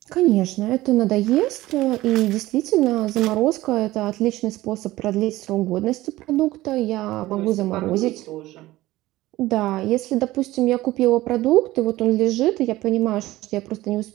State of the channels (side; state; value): left; quieter; 17.2 dB